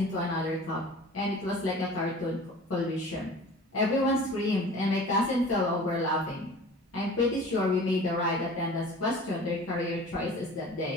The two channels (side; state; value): both; normal; correlation 0.42